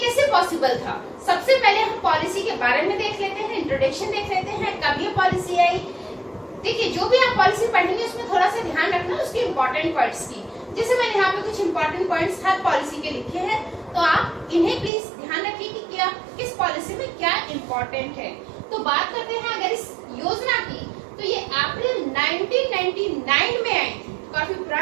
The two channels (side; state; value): left; drops out; at 14.9 s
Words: पॉसिबल था। सबसे पहले हम पॉलिसी के बारे में देख लेते हैं, इंट्रोडक्शन देख लेते हैं, कब ये पॉलिसी आई। देखिए, जो भी आप पॉलिसी पढ़ेंगे उसमें थोड़ा सा ध्यान रखना उसके इम्पोर्टेंट पॉइंट्स की। जैसे मैंने यहाँ पे कुछ इम्पोर्टेंट पॉइंट्स हर पॉलिसी के लिखे हैं, तो आप इन्हें प्लीज ध्यान रखिए कि क्या किस पॉलिसी में क्या इम्पोर्टेंट है। तो बात करते हैं अगर इस योजना की, तो ये अप्रैल 1999 में आई थी, काफी